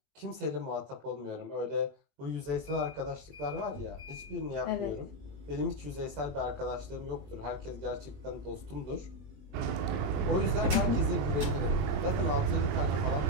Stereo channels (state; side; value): late; left; 20 ms